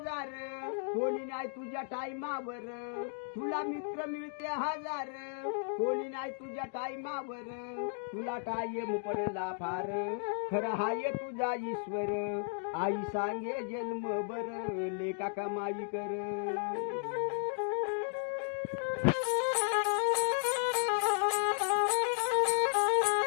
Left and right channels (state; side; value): silent; right; 55 dB below the other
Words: कोणी नाही तुझ्या टाईमावर. तुला मित्र मिळते हजार, कोणी नाही तुझ्या टाईमावर. तुला टाईम पडला फार, खरं हाय तुझा ईश्वर. आई सांगे जन्म बर, लेका कमाई कर.